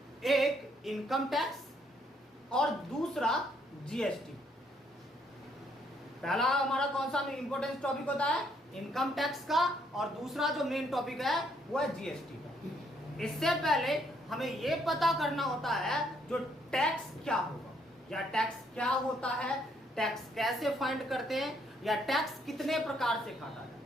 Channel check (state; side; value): normal; both; correlation 0.70